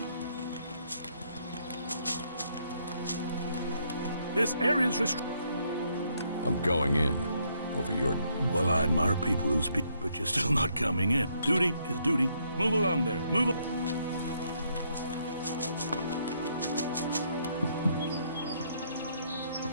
This area's I'm going in. Over your... Well, I admire people who speak, but you're still not coming in. Duty is duty. Move along there. Move along.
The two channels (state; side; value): inverted; both; correlation -0.72